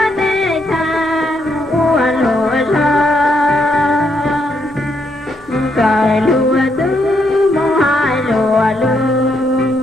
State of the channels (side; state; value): right; noise; hum, 27 dB below the sound